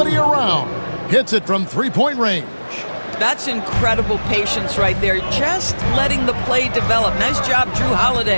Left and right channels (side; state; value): both; inverted; correlation -1.00